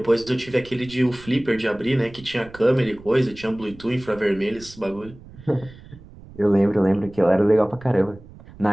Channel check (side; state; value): right; noise; rumble, 20 dB below the sound